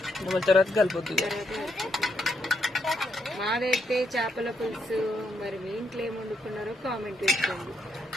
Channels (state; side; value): normal; both; correlation 0.78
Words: తర్వాత కలిపొద్దు మాదైతే చేపల పులుసు మరి మీ ఇంట్లో ఏమి వండుకున్నారో కామెంట్ పెట్టండి